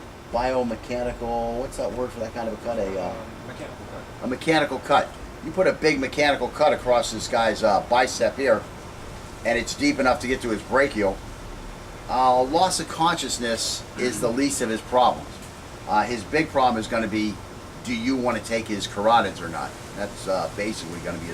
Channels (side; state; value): both; identical; correlation 1.00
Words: Biomechanical, what's that word for that kind of a cut? Mechanical cut. A mechanical cut. You put a big mechanical cut across this guy's bicep here, and it's deep enough to get to his brachial. Loss of consciousness is the least of his problems. His big problem is going to be, do you want to take his carotids or not? That's basically going to be